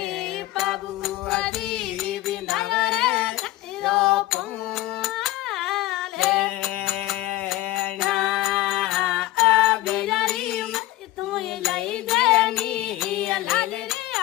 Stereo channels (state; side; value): quieter; right; 16.8 dB